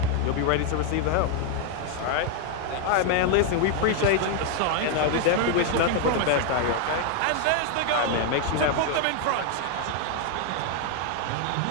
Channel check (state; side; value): different; both; correlation 0.01